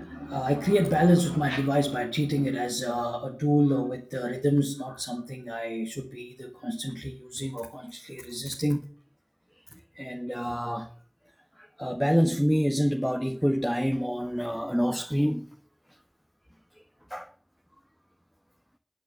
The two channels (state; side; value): identical; both; correlation 1.00